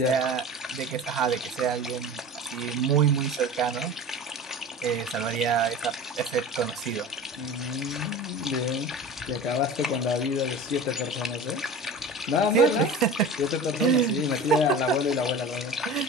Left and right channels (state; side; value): normal; both; correlation 0.36